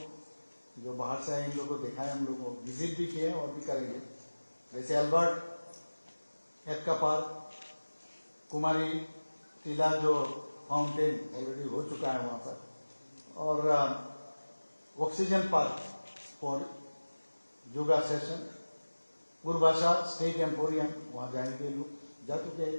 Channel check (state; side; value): inverted; both; correlation -1.00